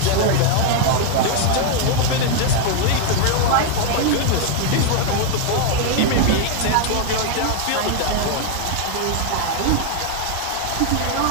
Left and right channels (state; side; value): different; both; correlation 0.00